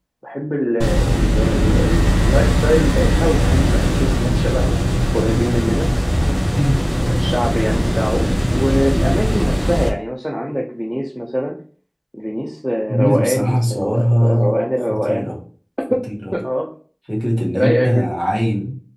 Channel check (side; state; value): both; identical; correlation 1.00